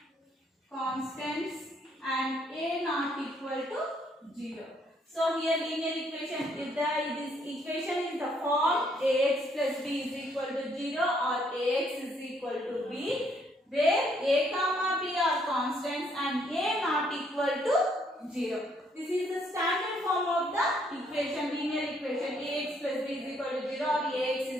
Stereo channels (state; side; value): normal; both; correlation 0.69